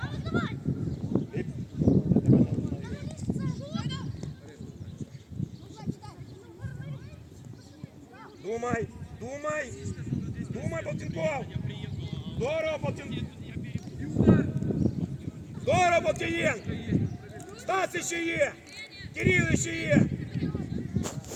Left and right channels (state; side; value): identical; both; correlation 1.00